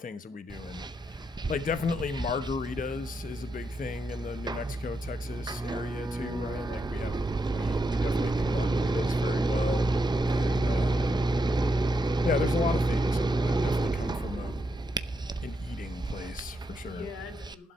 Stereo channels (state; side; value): normal; both; correlation 0.82